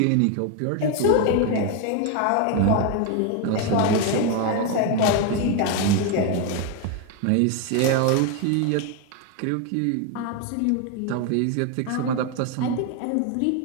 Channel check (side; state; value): both; different; correlation 0.01